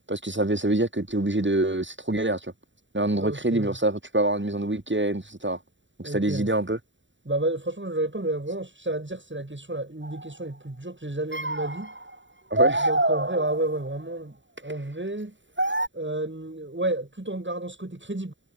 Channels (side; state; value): left; late; 0.54 ms